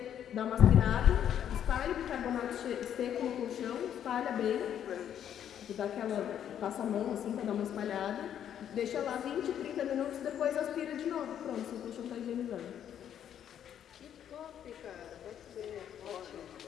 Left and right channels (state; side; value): quieter; right; 9.7 dB